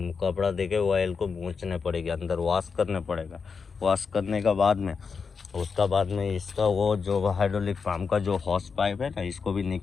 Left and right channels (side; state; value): right; quieter; 5.5 dB